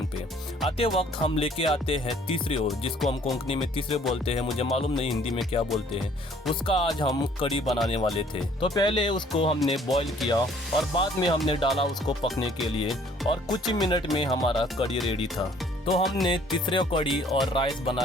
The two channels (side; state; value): both; normal; correlation 0.58